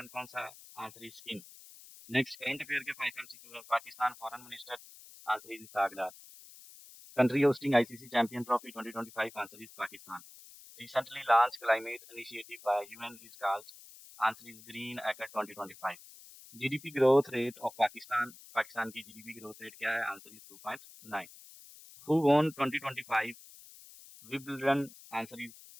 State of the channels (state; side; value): noise; left; hiss, 19 dB below the sound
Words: कौन सा है? Answer is skin. Next current affair के 5 MCQ है। Pakistan foreign minister, answer is Isaac Dar. Country hosting ICC champion trophy 2025, answer is Pakistan. Recently launched climate initiative by UN is called, answer is Green Accord 2025. GDP growth rate of Pakistan की GDP growth rate क्या है? Answer is 2.9. Who won 2025 Wimbledon? Answer is